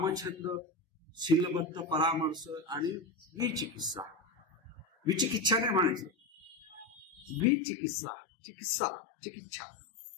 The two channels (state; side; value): drops out; right; at 7.5 s